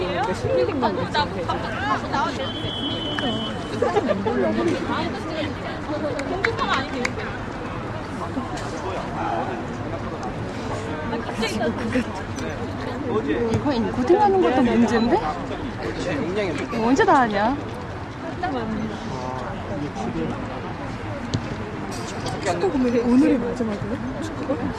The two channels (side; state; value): both; identical; correlation 1.00